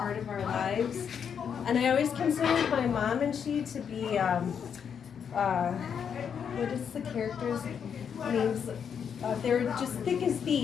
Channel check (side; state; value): right; quieter; 7.5 dB